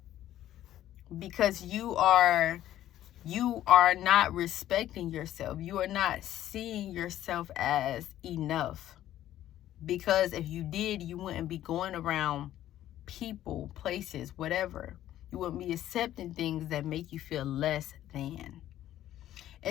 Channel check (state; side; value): quieter; right; 12.8 dB